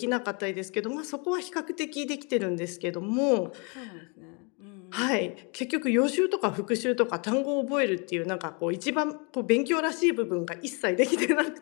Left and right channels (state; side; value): quieter; right; 33.7 dB